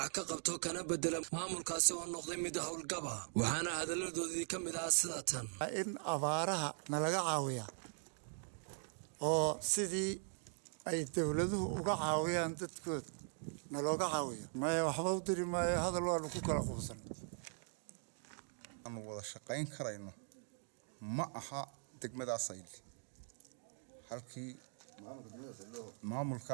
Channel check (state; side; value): silent; left; 51 dB below the other